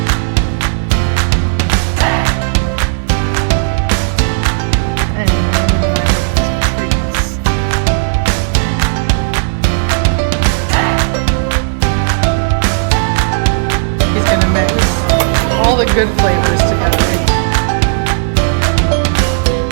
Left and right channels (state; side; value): silent; left; digital silence